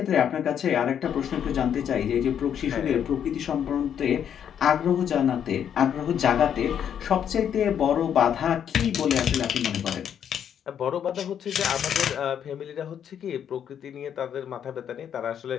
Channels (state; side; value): quieter; right; 8.9 dB